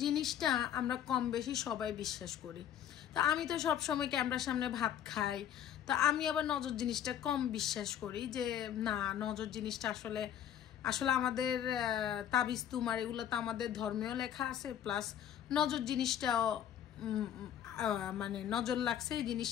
জিনিসটা আমরা কম বেশি সবাই বিশ্বাস করি। তা আমি তো সব সময় ক্যামেরার সামনে ভাত খাই, তা আমি আবার নজর জিনিসটা কম বিশ্বাস করি যে না, নজর জিনিসটা আসলে আসলে আমাদের তাবিজ তুমার এগুলো তো আমাদের ধর্মেও লেখা আছে, প্লাস নজর জিনিসটাও মানে নজর লাগছে এই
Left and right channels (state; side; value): quieter; right; 10.2 dB